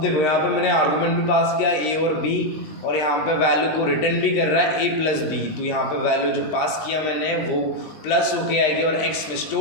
देखो यहाँ पे मैंने आर्गूमेंट भी पास किया ए और बी, और यहाँ पे वैल्यू को रिटर्न भी कर रहा है ए प्लस बी। तो यहाँ पे वैल्यू जो पास किया मैंने वो प्लस होके आएगी और एक्स में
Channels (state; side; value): late; right; 20 ms